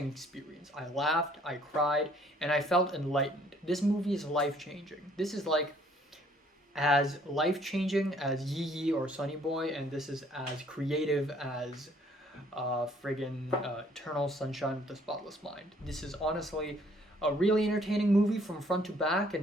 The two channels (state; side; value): normal; both; correlation 0.62